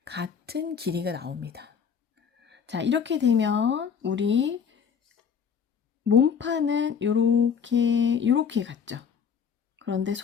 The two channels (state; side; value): quieter; right; 6.9 dB